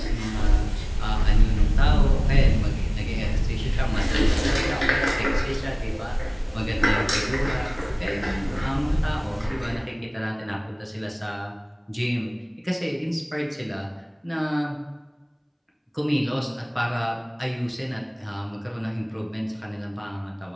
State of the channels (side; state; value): both; identical; correlation 1.00